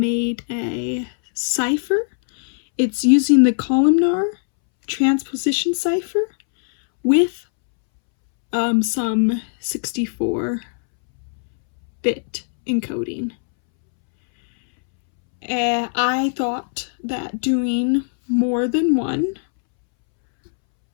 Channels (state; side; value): silent; right; 65 dB below the other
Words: a cipher. It's using the Columnar transposition cipher with some 64-bit encoding. I thought that doing more than one